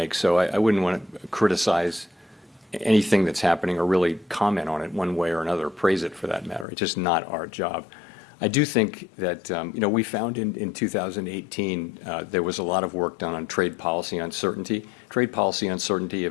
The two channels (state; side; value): drops out; right; at 6.7 s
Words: So I wouldn't want to criticize anything that's happening or really comment on it one way or another, praise it for that matter. It's just not our job. I do think that, you know, we found in 2018 there was a lot of work done on trade policy uncertainty. Trade policy uncertainty,